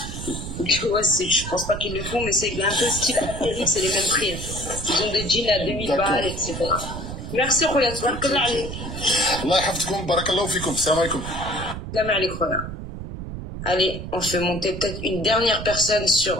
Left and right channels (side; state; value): right; noise; rumble, 8 dB below the sound